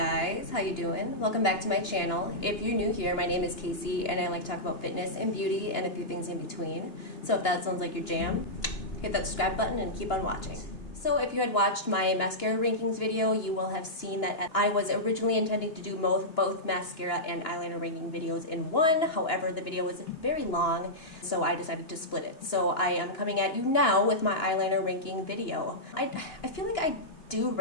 how you doing? Welcome back to my channel. If you're new here, my name is Casey and I like to talk about fitness and beauty and a few things in between. So if that sounds like your jam, hit that subscribe button and keep on watching. So if you had watched my mascara rankings video, you will have seen that I was originally intending to do both mascara and eyeliner ranking videos in one. However, the video was very long, so I decided to split it. So I am coming at you now with my eyeliner ranking video. I feel like I do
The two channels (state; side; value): late; right; 2.9 ms